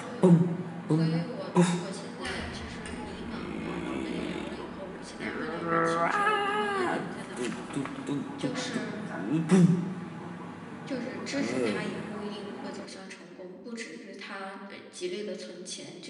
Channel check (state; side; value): identical; both; correlation 1.00